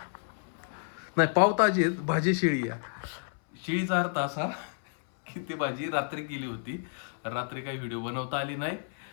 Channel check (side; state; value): right; silent; 57 dB below the other